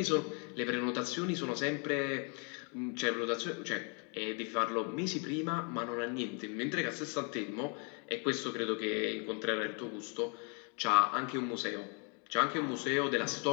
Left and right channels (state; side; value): quieter; right; 37.0 dB